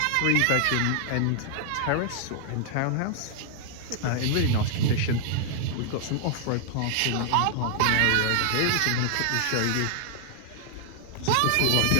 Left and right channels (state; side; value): different; both; correlation -0.01